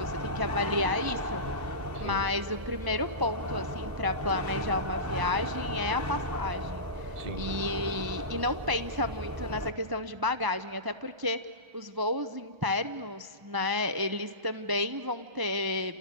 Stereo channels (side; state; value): left; late; 1.0 ms